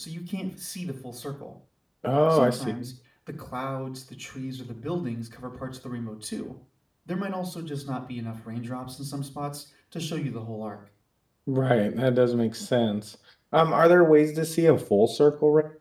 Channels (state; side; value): identical; both; correlation 1.00